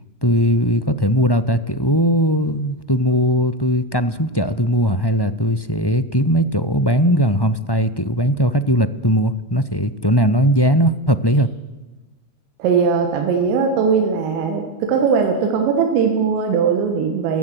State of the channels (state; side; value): late; right; 1.1 ms